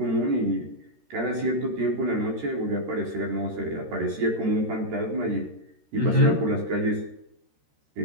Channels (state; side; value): late; left; 13 ms